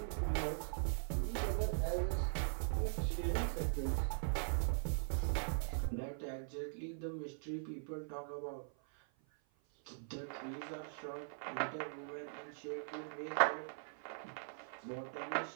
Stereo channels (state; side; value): silent; left; 50 dB below the other